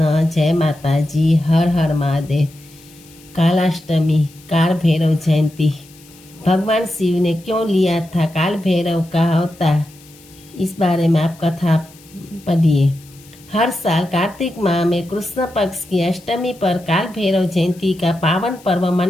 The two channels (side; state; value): left; noise; hiss, 25 dB below the sound